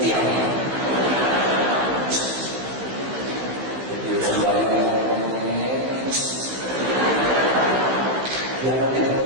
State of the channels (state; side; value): late; left; 15 ms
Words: jadi sembahyang. Yang nanti